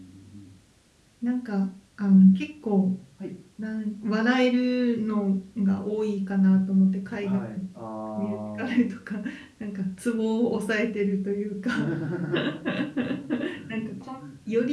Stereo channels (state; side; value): identical; both; correlation 1.00